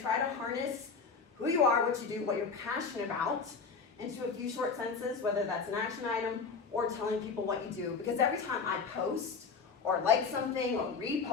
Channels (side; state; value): right; quieter; 5.1 dB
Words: to harness who you are, what you do, what you're passionate about into a few short sentences, whether that's an action item or telling people what you do. Because every time I post or like something or